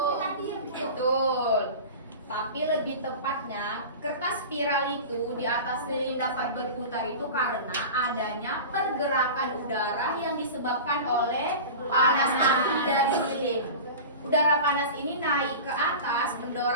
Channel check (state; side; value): inverted; both; correlation -0.32